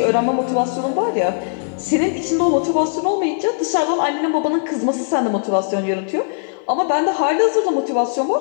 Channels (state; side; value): silent; right; digital silence